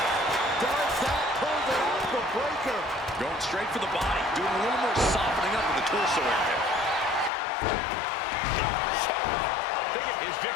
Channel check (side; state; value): right; drops out; at 7.3 s